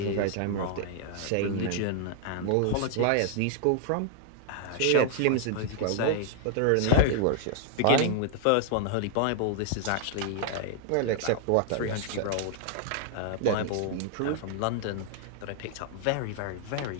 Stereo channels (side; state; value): both; different; correlation 0.00